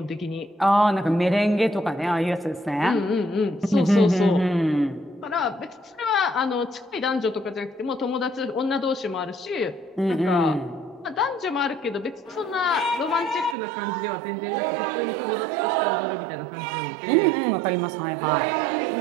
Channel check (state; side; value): drops out; left; at 13.6 s